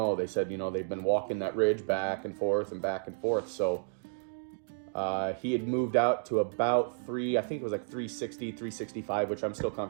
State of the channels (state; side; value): silent; left; digital silence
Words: They said, they've been walking that ridge back and forth and back and forth. So he had moved out to about I think it was like 360, 365, which I'm still